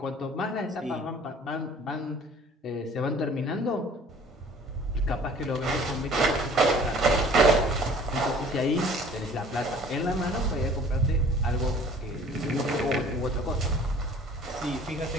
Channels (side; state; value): both; normal; correlation 0.51